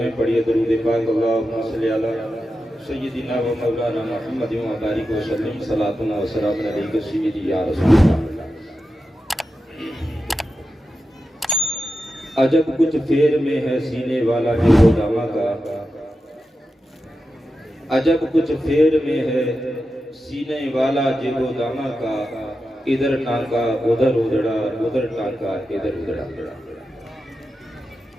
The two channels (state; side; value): normal; both; correlation 0.90